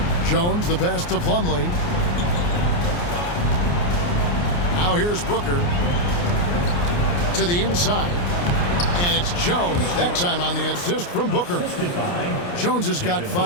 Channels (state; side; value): late; right; 29 ms